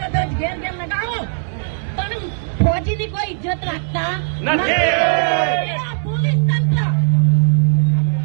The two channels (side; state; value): left; silent; 64 dB below the other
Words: ઘેર ઘેર લગાવો, પણ ફોજીની કોઈ ઇજ્જત રાખતા નથી. પોલીસ તંત્ર